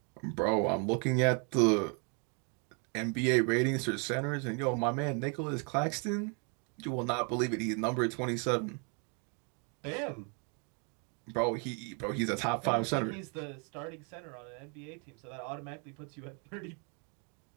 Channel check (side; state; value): left; quieter; 37.2 dB